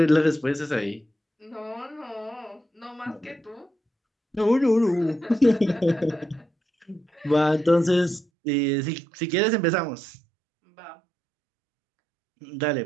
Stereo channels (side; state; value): left; drops out; at 8.2 s